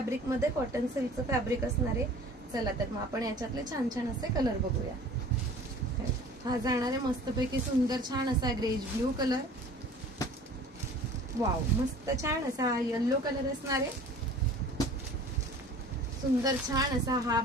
मध्ये कॉटन सिल्कचं फॅब्रिक असणार आहे. चला तर मग आपण याच्यातले छान छान असे कलर बघूया. हा जाणार आहे मस्तपैकी सुंदर छान असा ग्रेज ब्लू कलर. वाव मस्त छान असा येलो कलर असणार आहे. सुंदर छान असा हा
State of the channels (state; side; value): normal; both; correlation 0.46